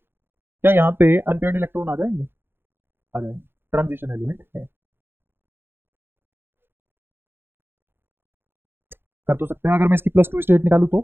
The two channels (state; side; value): late; left; 0.10 ms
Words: यहाँ पे अनपेयर्ड इलेक्ट्रॉन आ जाएंगे? आ जाएंगे, ट्रांजिशन एलिमेंट है। कर तो सकते हैं, अगर मैं इसकी +2 स्टेट निकालूं